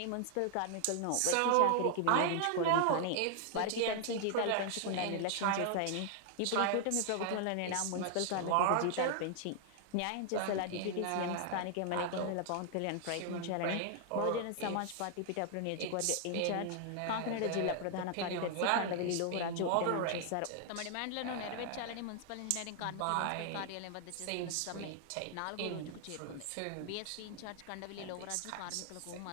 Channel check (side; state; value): both; different; correlation 0.00